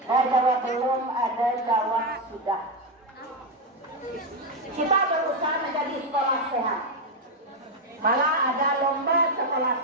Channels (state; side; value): normal; both; correlation 0.06